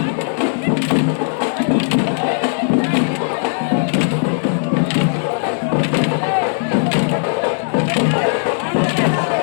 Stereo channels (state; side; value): silent; right; 65 dB below the other